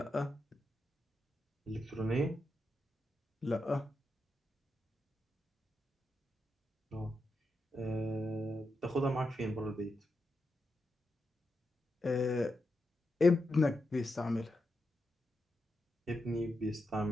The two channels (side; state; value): both; normal; correlation 0.86